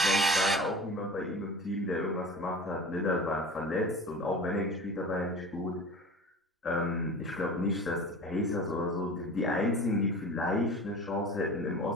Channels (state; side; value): normal; both; correlation 0.36